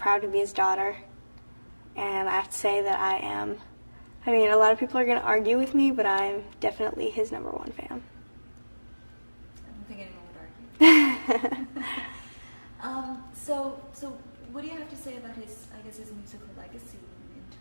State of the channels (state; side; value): inverted; both; correlation -1.00